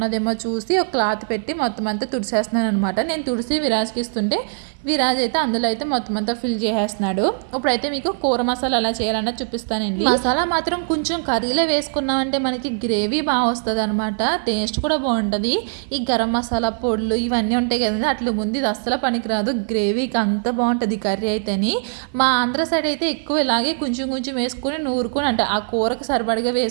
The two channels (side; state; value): left; silent; 55 dB below the other